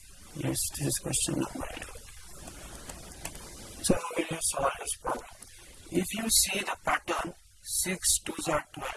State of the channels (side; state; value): both; identical; correlation 1.00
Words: Yes, this is question number 11. So how will you solve this problem? If you see the pattern, 6 2s are